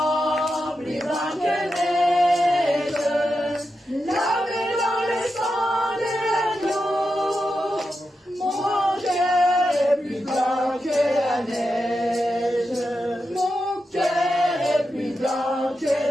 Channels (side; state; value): both; normal; correlation 0.88